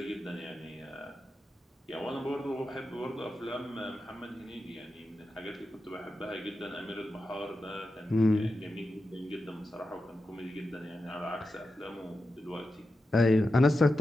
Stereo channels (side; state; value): both; normal; correlation 0.90